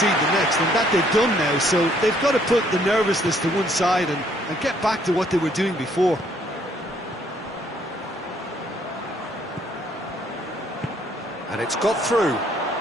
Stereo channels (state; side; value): normal; both; correlation 0.66